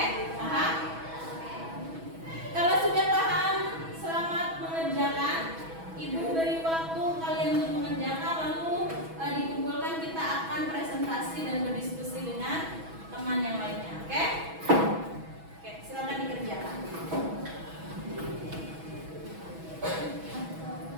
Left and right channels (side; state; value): left; late; 6.1 ms